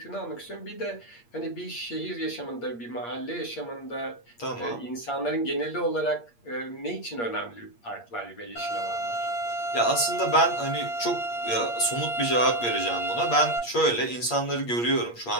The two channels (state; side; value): late; right; 8.5 ms